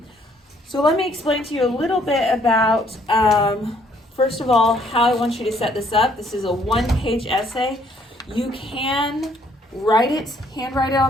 So let me explain to you a little bit about, first of all, how I want you to set this up. This is a one-page essay. You can write it, handwrite it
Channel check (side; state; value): both; normal; correlation 0.65